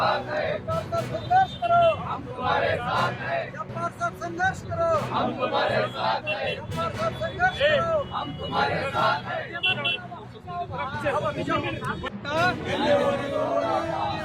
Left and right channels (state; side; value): identical; both; correlation 1.00